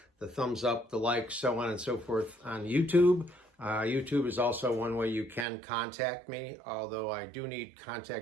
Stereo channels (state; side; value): drops out; left; at 5.5 s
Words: the thumbs up, the likes, so on and so forth on YouTube. YouTube is also one way you can contact me, although I do need